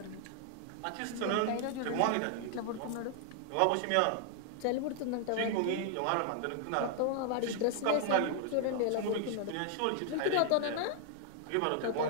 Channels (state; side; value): different; both; correlation 0.00